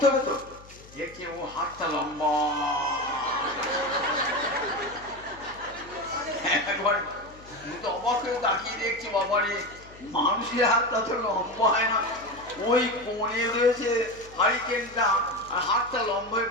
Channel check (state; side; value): noise; left; hum, 21 dB below the sound